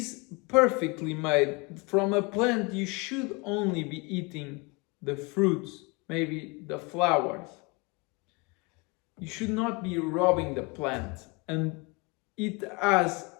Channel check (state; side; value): quieter; right; 28.4 dB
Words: perfectly made. From a plant, you should only be eating the fruits, maybe the flowers. You should not be robbing the plant, and it has